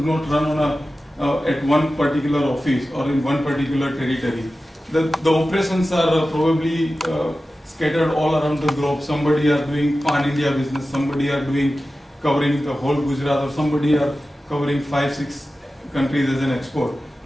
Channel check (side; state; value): both; normal; correlation 0.94